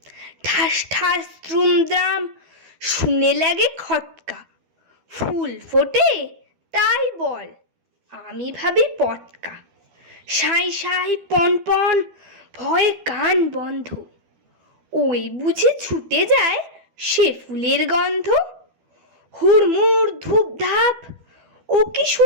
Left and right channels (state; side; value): late; left; 12 ms